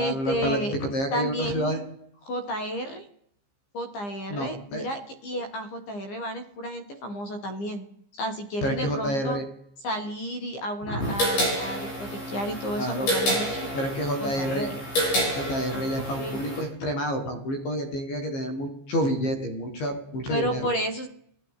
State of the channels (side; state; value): right; late; 15 ms